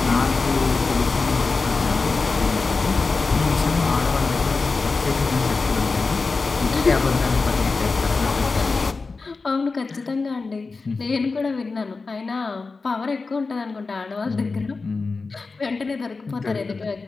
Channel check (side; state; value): right; quieter; 4.1 dB